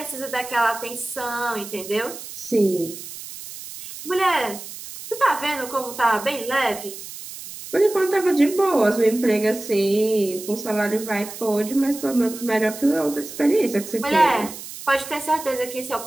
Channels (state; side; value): noise; right; hiss, 12 dB below the sound